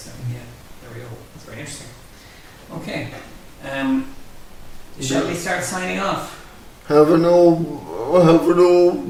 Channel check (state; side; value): identical; both; correlation 1.00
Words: Yeah. There we go. signing off. Having no